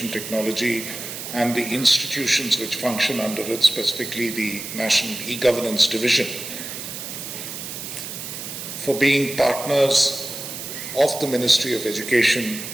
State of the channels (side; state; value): right; noise; hiss, 8 dB below the sound